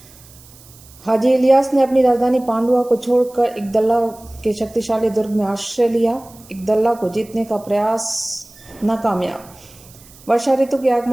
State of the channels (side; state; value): right; noise; hiss, 23 dB below the sound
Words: हाजी इलियास ने अपनी राजधानी पांडुआ को छोड़कर इकदल्ला के शक्तिशाली दुर्ग में आश्रय लिया। इकदल्ला को जीतने का प्रयास नाकामयाब। वर्षा ऋतु के